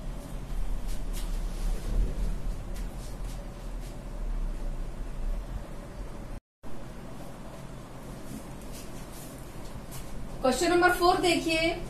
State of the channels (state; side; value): identical; both; correlation 1.00